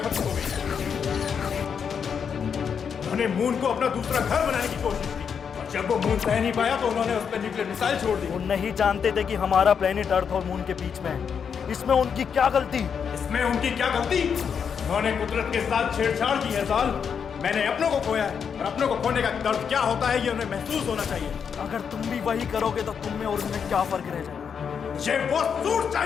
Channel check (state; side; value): quieter; right; 6.9 dB